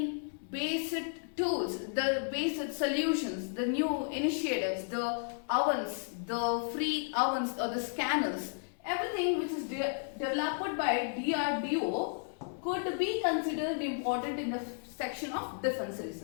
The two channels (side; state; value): right; silent; digital silence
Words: based tools, the based solutions, the new initiatives, the ovens, the free ovens or the scanners, everything which is developed by DRDO could be considered important in the section of defense